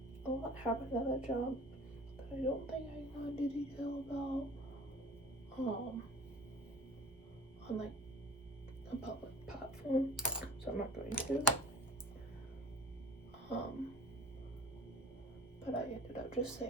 a lot happened at that job that I don't think I can go into detail about, on like a public platform, so I'm not going to. But I ended up just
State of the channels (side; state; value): both; normal; correlation 0.45